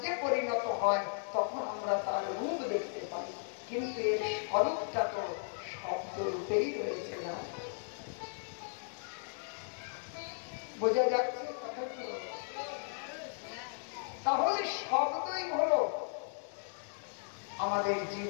পরিণত হয়, তখন আমরা তার রূপ দেখতে পাই। কিন্তু এর স্বরূপটা তো শব্দ রূপেই রয়েছে না। বোঝা যাচ্ছে কথাগুলো? তাহলে শব্দই হলো আমাদের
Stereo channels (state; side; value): silent; right; 54 dB below the other